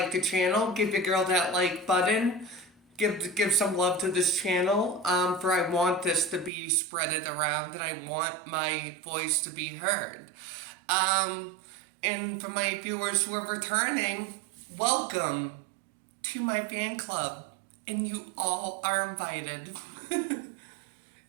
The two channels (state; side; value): drops out; left; at 6.5 s